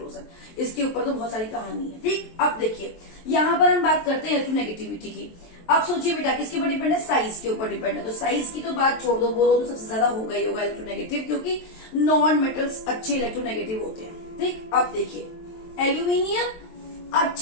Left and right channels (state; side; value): late; right; 23 ms